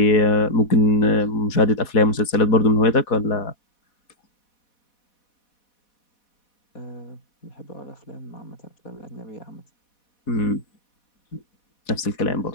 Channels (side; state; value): right; late; 4.1 ms